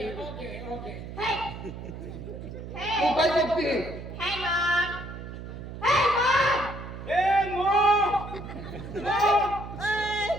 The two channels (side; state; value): right; noise; hum, 10 dB below the sound